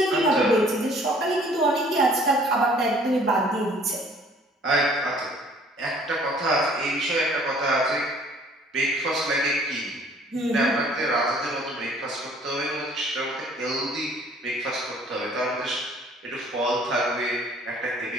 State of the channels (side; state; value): both; normal; correlation 0.56